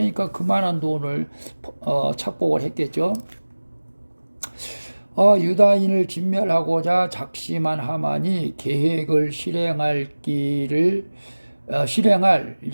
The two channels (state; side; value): inverted; both; correlation -1.00